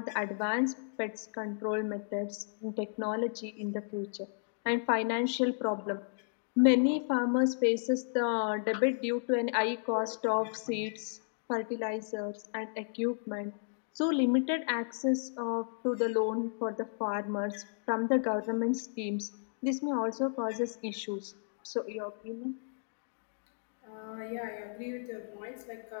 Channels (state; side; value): silent; right; digital silence